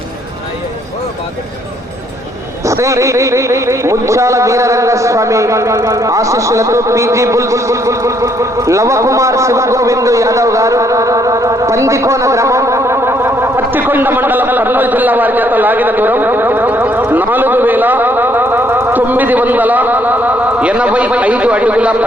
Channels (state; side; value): normal; both; correlation 0.69